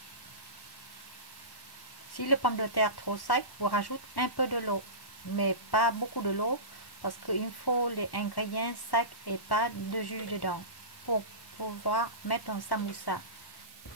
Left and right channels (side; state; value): right; late; 1.1 ms